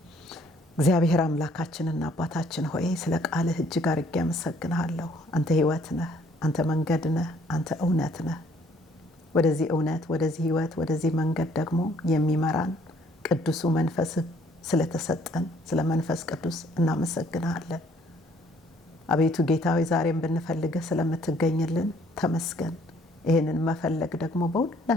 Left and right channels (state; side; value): normal; both; correlation 0.62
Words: እግዚአብሔር አምላካችንና አባታችን ሆይ ስለ ቃልህ እጅግ አድርጌ አመሰግንሃለሁ። አንተ ሕይወት ነህ፣ አንተ መንገድ ነህ፣ አንተ እውነት ነህ። ወደዚህ እውነት፣ ወደዚህ ሕይወት፣ ወደዚህ መንገድ ደግሞ የሚመራን ቅዱሱ መንፈስህ ስለተሰጠን ስለ መንፈስ ቅዱስ እናመሰግንሃለን። አቤቱ ጌታ ሆይ ዛሬም ብንፈልግህ ስለምትገኝልን ተመስገን። ይህንን መፈለግ ደግሞ